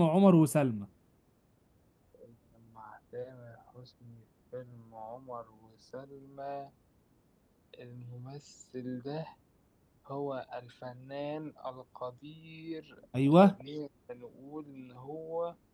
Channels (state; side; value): identical; both; correlation 1.00